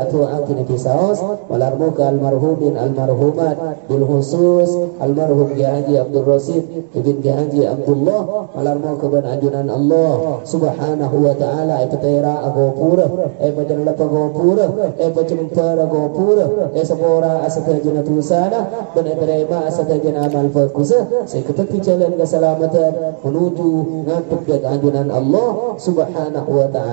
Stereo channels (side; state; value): left; silent; 69 dB below the other